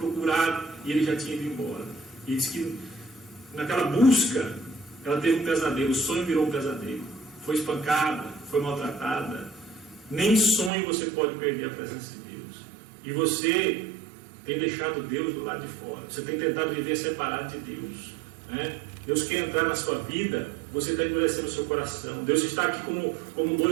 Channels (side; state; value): left; drops out; at 10.7 s